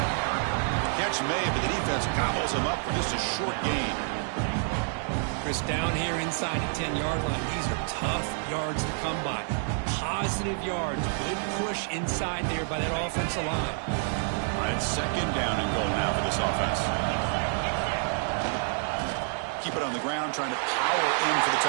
Catch made, but the defense gobbles him up for just a short gain. Chris, down here inside the 10-yard line, these are tough yards to come by. Positive yards, good push inside there by that offensive line. It's 2nd down and goal now for this offense. Keep it on the ground, trying to power in for the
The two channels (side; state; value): left; silent; 59 dB below the other